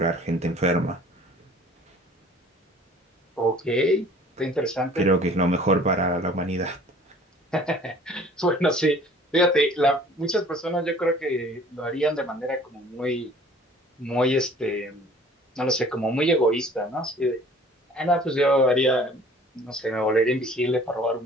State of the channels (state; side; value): normal; both; correlation 0.51